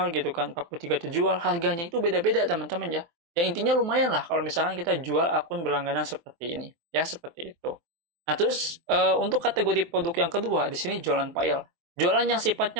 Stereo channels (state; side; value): late; left; 23 ms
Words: gitu kan, 43 terjual. Harganya itu beda-beda teman-teman ya. Yang intinya lumayan lah kalau misalkan kita jual akun berlangganan seperti ini. Ya, seperti itu. Nah, terus untuk kategori produk yang kedua, di sini jualan file. Jualan yang sifatnya